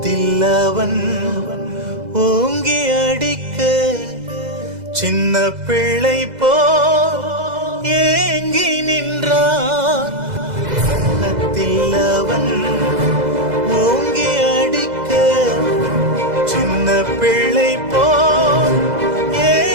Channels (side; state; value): left; late; 2.0 ms